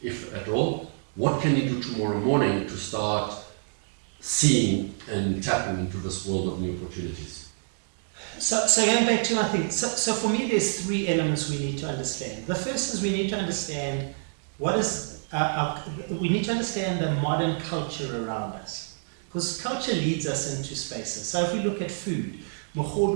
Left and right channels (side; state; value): left; silent; digital silence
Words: if at all? What can he do tomorrow morning to start seeing and tapping into this world of new opportunities? So going back to my thing, so for me there's three elements we need to understand. The first is we need to understand we need to understand the modern culture around us. Because culture leads us into spaces. So if we look at food,